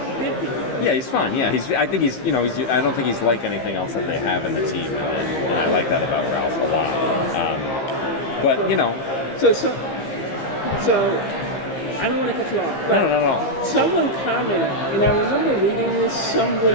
bitchy. Yeah, he's fun. Yeah, I think he's. I don't think he's like anything else that they have in the team, and I like that about Ralph a lot. But So I don't want to cut you off. But no. Someone commented, and I remember reading this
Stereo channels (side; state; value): right; late; 15 ms